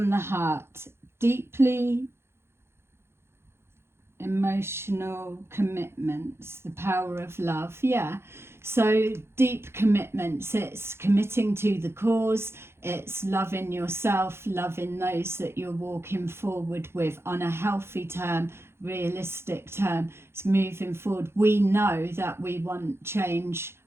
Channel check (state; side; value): late; left; 0.12 ms